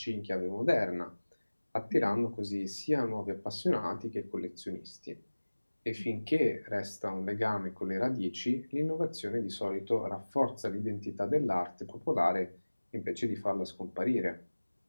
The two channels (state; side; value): inverted; both; correlation -1.00